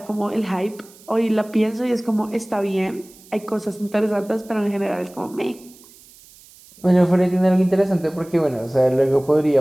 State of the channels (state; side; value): noise; right; hiss, 24 dB below the sound